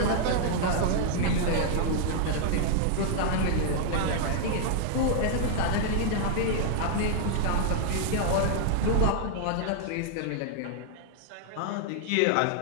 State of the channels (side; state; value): both; different; correlation -0.01